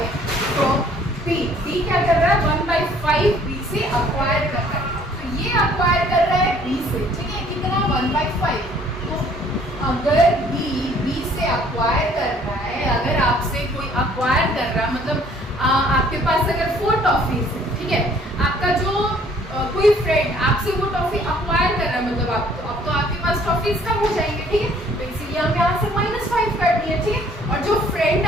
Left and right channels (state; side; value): normal; both; correlation 0.59